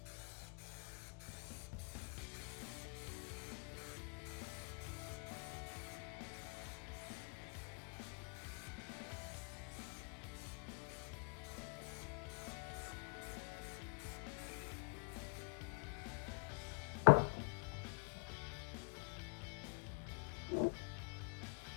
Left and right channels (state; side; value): quieter; right; 36.6 dB